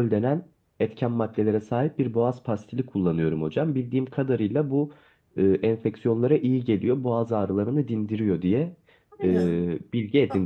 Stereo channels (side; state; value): both; identical; correlation 1.00